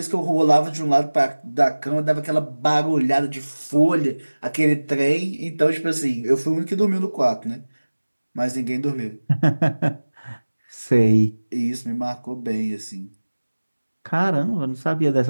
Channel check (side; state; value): both; inverted; correlation -1.00